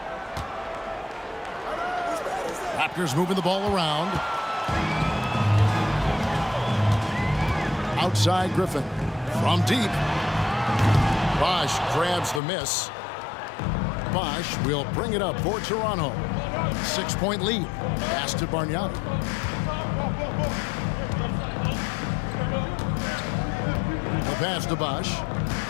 Raptors moving the ball around. Outside Griffin. From deep. Bosch grabs the miss. Bosch will bring it up for Toronto. 6-point lead. Pass to Bargnani. The pass to Bosch.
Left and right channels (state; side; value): drops out; right; at 12.4 s